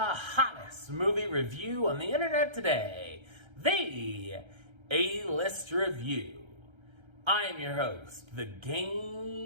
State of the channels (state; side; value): late; left; 1.3 ms